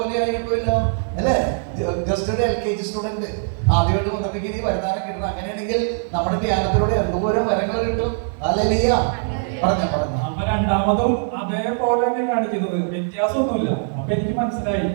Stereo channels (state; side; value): silent; left; digital silence